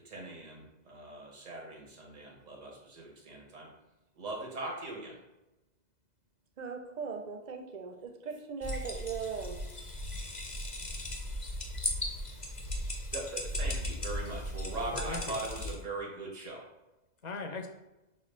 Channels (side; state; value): left; late; 2.0 ms